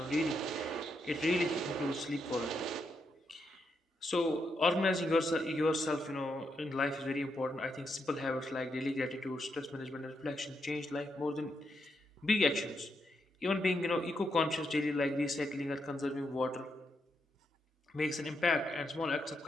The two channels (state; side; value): normal; both; correlation 0.81